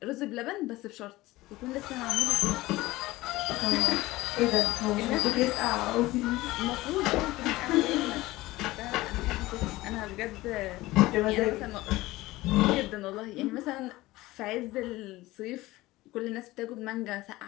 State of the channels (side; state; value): right; quieter; 18.6 dB